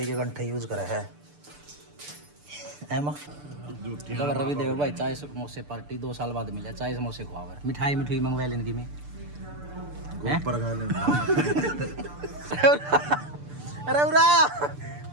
के गंठे यूज करा है एमा रवि देवर भाई चाय समोसे पार्टी 2 साल बाद मिला चाय समोसे खुआवर मिठाई मिठाई मंगवा लेने की में अरे उरा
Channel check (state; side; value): late; left; 6.8 ms